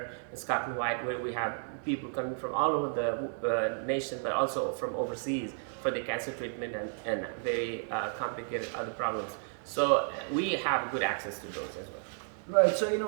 and Scott and White, where we have people coming from all over the nation, but also from overseas for the cancer treatment and very complicated other problems. So we have good access to those as well. Right. So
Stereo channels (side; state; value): left; silent; 56 dB below the other